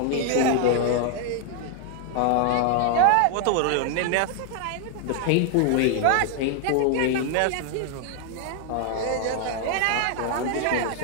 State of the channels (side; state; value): both; different; correlation 0.00